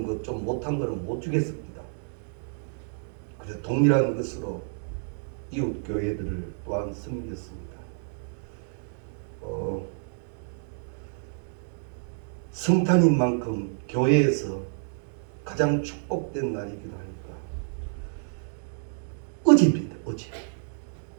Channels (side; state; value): left; silent; digital silence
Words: 것 좀 못한 거는 못 주겠습니다. 그래서 동일한 것으로 이웃 교회들을 또한 섬겼습니다. 성탄인 만큼 교회에서 가장 축복된 날이기도 하니까 어제입니다. 어제